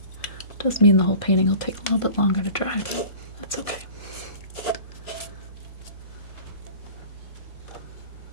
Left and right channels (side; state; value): right; late; 1.7 ms